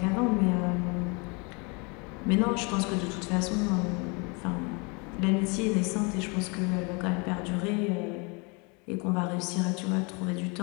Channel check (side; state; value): right; quieter; 30.8 dB